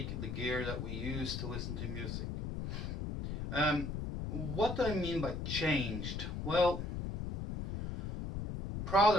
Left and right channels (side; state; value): left; noise; rumble, 4 dB below the sound